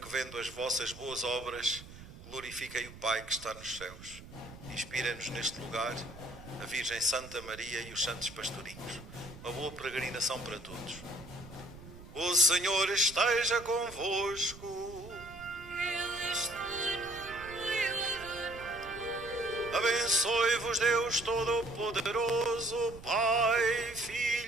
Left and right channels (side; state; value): right; noise; rumble, 16 dB below the sound